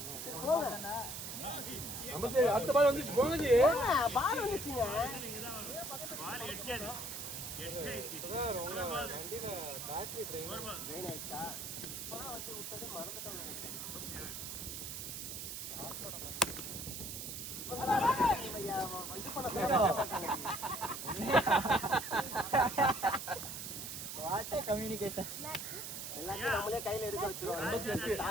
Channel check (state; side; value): noise; right; hiss, 7 dB below the sound